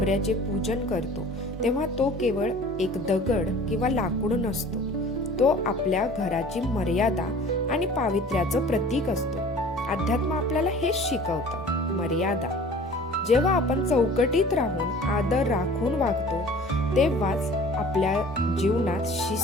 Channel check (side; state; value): both; normal; correlation 0.45